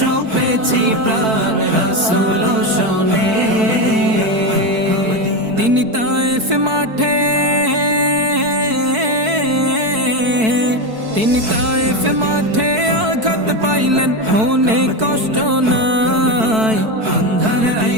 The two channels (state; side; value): late; left; 4.6 ms